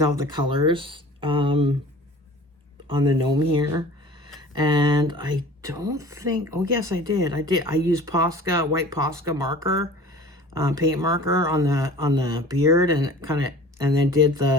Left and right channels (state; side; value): normal; both; correlation 0.43